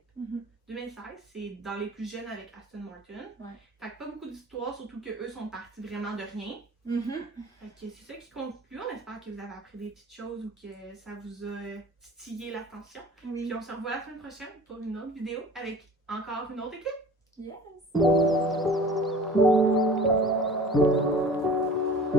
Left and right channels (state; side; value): normal; both; correlation 0.43